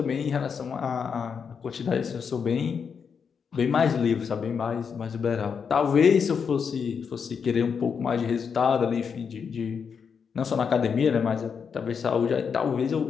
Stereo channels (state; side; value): quieter; right; 6.4 dB